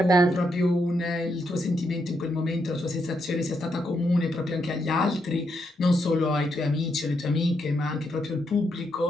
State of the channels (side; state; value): both; normal; correlation 0.80